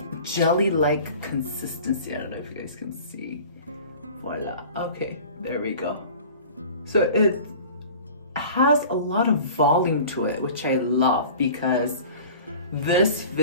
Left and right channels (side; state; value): both; inverted; correlation -0.42